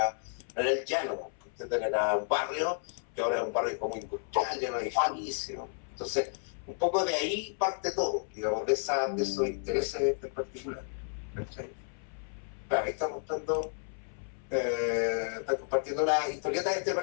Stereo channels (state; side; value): silent; right; 56 dB below the other